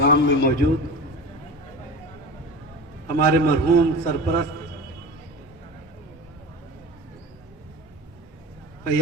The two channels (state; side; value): normal; both; correlation 0.31